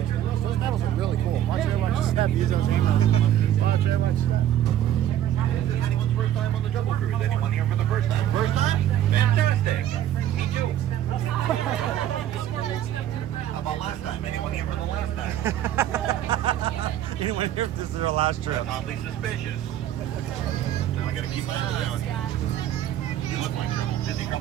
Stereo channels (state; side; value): quieter; left; 11.6 dB